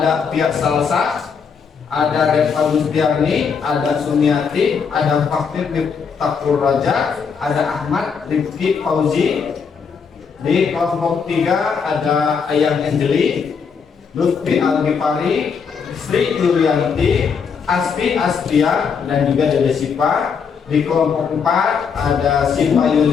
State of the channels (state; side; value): quieter; right; 6.1 dB